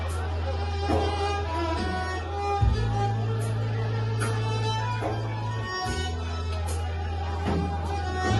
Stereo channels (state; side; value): identical; both; correlation 1.00